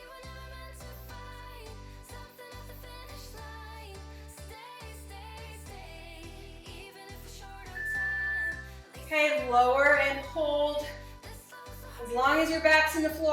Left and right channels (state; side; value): identical; both; correlation 1.00